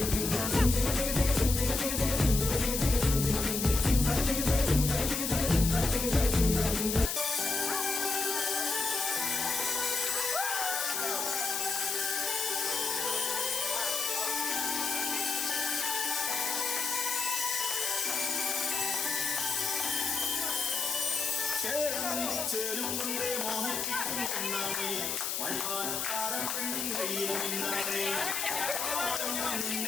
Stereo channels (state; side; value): noise; left; hiss, 1 dB below the sound